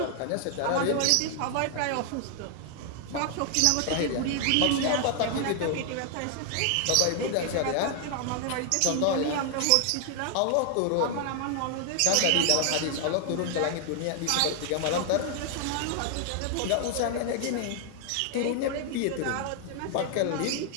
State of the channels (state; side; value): different; both; correlation 0.00